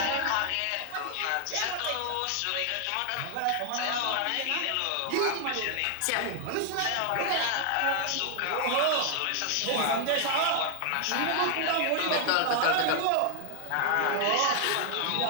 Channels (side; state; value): both; different; correlation 0.00